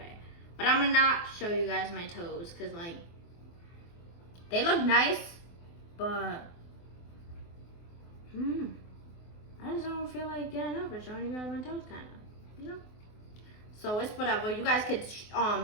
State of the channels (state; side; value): late; right; 24 ms